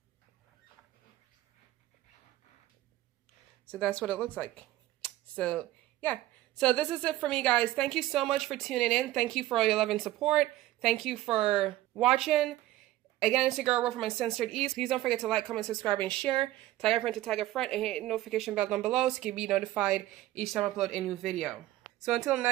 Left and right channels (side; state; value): left; quieter; 15.6 dB